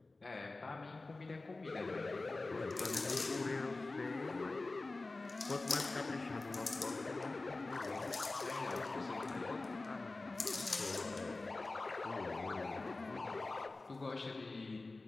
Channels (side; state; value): right; quieter; 3.3 dB